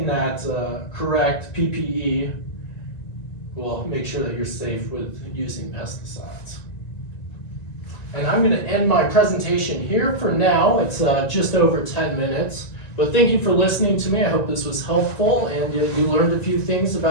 that correct PPE will make sure that you're safe with using pesticides. And I'm going to end my presentation here for now. It's just over 10 minutes. But thank you for listening to me. I hope this was helpful and you learned a few things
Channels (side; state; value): right; late; 1.9 ms